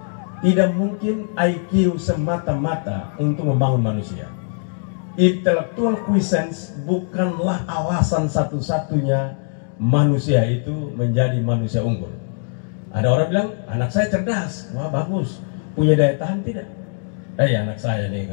tidak mungkin IQ semata-mata untuk membangun manusia. Intellectual quiescence bukanlah alasan satu-satunya manusia itu menjadi manusia unggul. Ada orang bilang, anak saya cerdas, wah bagus, punya daya tahan tidak? Anak saya nih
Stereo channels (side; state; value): right; silent; digital silence